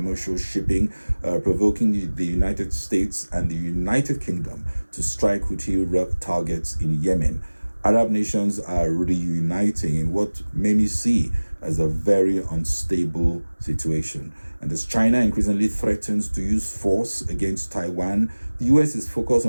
shipping, provoking the United States and the United Kingdom to strike Houthi targets in Yemen. Arab nations are reuniting in what many see as a very unstable situation. And as China increasingly threatens to use force against Taiwan, the US is focused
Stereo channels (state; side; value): inverted; both; correlation -1.00